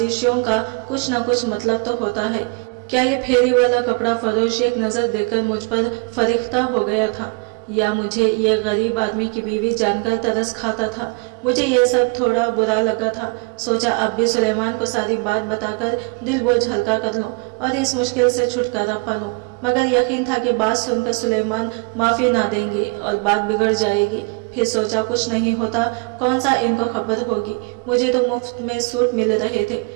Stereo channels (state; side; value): quieter; left; 29.2 dB